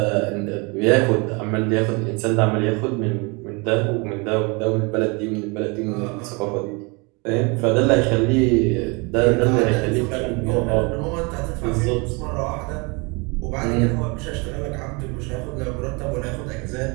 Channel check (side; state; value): left; quieter; 29.4 dB